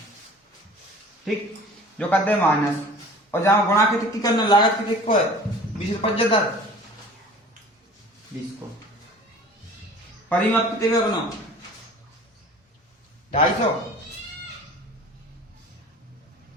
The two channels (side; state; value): both; normal; correlation 0.44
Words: ठीक, जो करते हैं माइनस, और जहां गुणा की करना लागत कितने को है 20 75 20 को, परिमाप कितने का बनाओ 250,